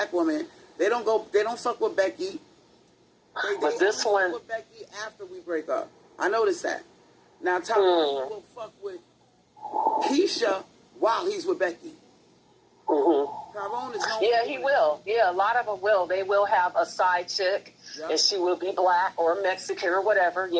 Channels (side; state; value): both; identical; correlation 1.00